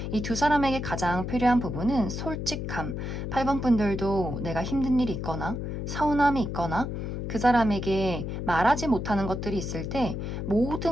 이 두 사람에게 가장 필요한 부분은 솔직함. 8번 분들도 내가 힘든 일이 있거나 서운함이 있거나 그 사람에게 말하지 못하는 것들이 있을 때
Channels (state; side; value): noise; left; hum, 4 dB below the sound